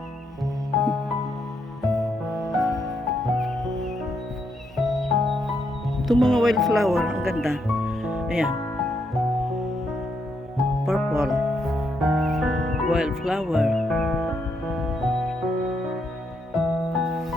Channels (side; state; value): both; normal; correlation 0.77